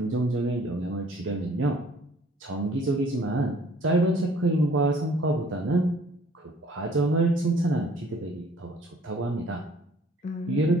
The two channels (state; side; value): normal; both; correlation 0.56